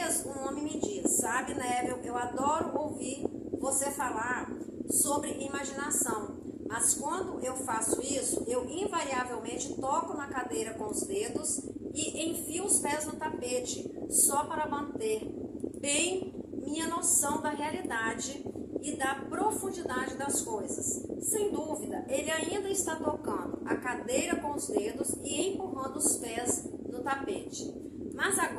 um homem me disse: sabe, Neville, eu adoro ouvir você falar sobre imaginação. Mas quando eu faço isso, eu invariavelmente toco na cadeira com os dedos e enfio os pés no tapete, só para manter bem minha noção da realidade e da profundidade das coisas. Sem dúvida, ele ainda está tocando a cadeira com os dedos e empurrando os pés no tapete. Mas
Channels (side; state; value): both; identical; correlation 1.00